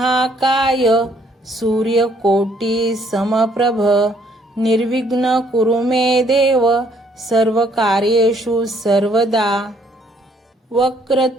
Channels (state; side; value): normal; both; correlation 0.65